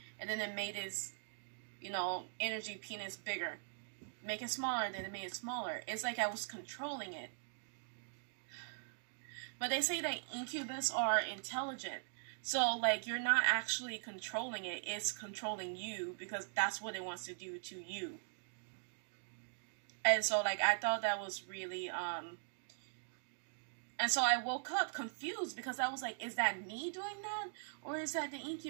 And then it made its, energy penis bigger. Make it smaller. Then it made it smaller. It's like I was controlling it. But they say that incubus are intelligent. So, like, you're not actually controlling it. It's controlling you, because that's what it wants to do to you. And so, like, I thought that was really, And so I woke up confused, because I was like, is that me doing that? Or is that the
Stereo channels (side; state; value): left; silent; digital silence